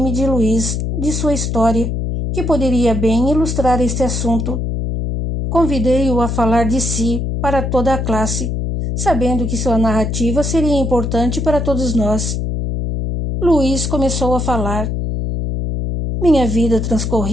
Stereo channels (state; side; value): noise; left; hum, 2 dB below the sound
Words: de Luiz, de sua história, que poderia bem ilustrar este assunto. Convidei-o a falar de si para toda a classe, sabendo que sua narrativa seria importante para todos nós. Luiz começou a falar. Minha vida